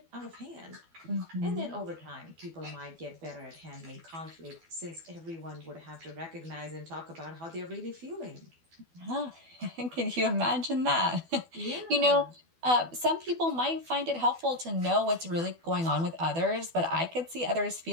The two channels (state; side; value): late; left; 12 ms